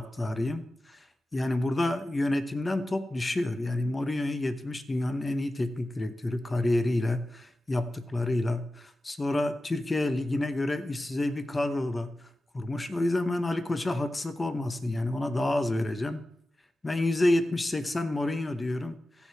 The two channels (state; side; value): normal; both; correlation 0.94